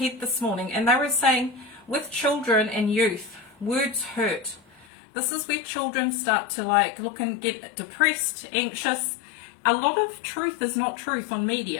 this morning. And they were saying, with children and youth, words hurt. This is where children start to look and get depressed, anxious. A lot of truth is not truth on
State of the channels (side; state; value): right; drops out; at 4.9 s